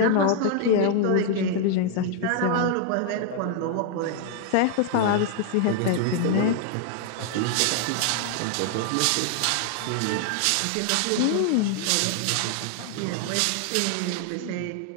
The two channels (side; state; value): both; different; correlation 0.00